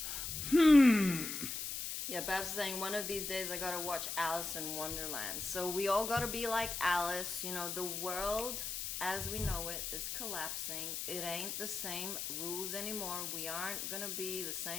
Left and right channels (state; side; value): noise; left; hiss, 4 dB below the sound